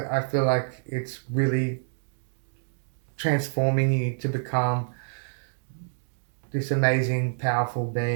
I feel like it's really transforming you to become this amazing, powerful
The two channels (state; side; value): silent; left; digital silence